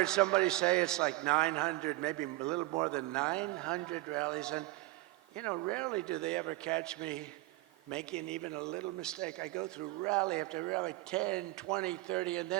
somebody say it's like 900, maybe a little more than 900 rallies. And, you know, rarely do they ever catch me making even a little mistake. I go through rally after rally, 10, 20, 30, and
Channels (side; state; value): left; quieter; 19.5 dB